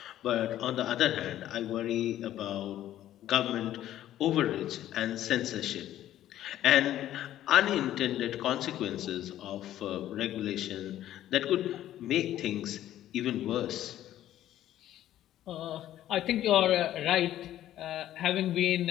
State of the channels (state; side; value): quieter; right; 12.7 dB